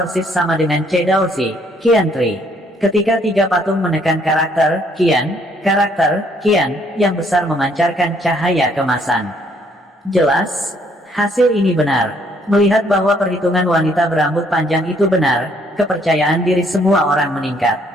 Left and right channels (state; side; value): normal; both; correlation 0.66